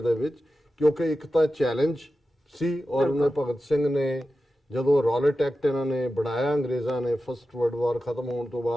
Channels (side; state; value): both; normal; correlation 0.92